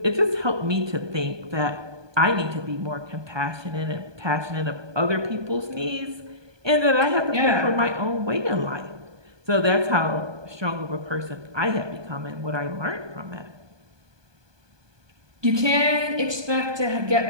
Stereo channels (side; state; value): left; late; 1.2 ms